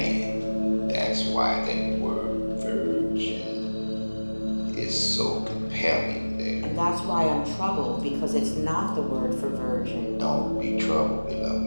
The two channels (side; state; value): both; inverted; correlation -1.00